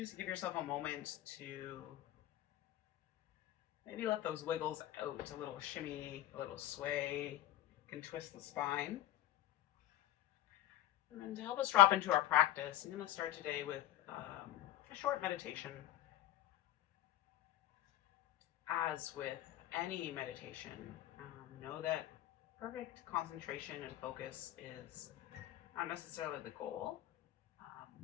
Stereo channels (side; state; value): right; quieter; 13.4 dB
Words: give yourself a moment to maybe let those wiggles out, a little shimmy, a little sway. You can twist the spine. And then to help us drop into our practice, I'm going to start today with a short meditation. As with any meditation, know that perfect concentration and focus is not necessarily the goal,